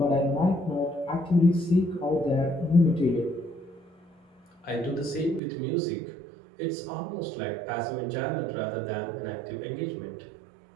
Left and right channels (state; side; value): drops out; left; at 5.4 s